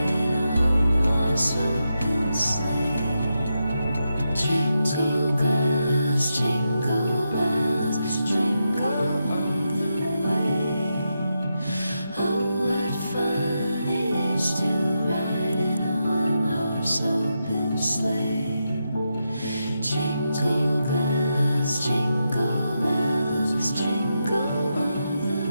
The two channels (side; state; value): both; inverted; correlation -0.86